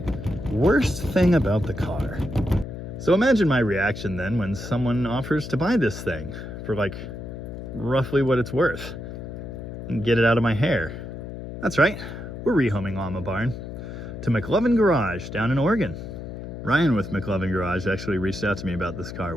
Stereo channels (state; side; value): noise; left; hum, 9 dB below the sound